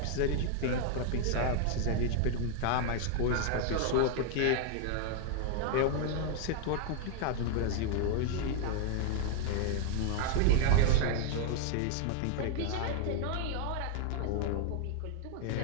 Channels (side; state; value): both; different; correlation -0.01